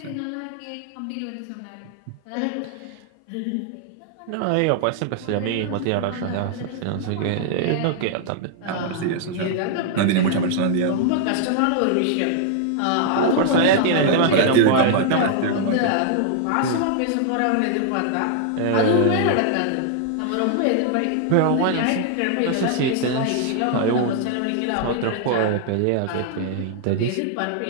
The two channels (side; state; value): both; different; correlation 0.00